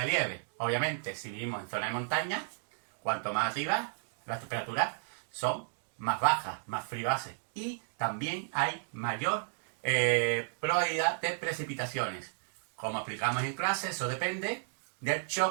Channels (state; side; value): silent; left; digital silence